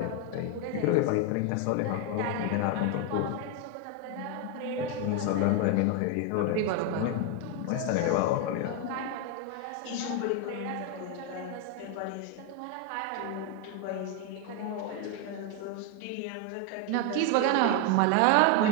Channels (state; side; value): different; both; correlation 0.01